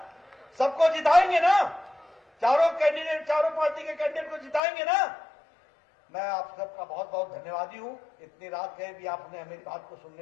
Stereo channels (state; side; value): drops out; right; at 4.6 s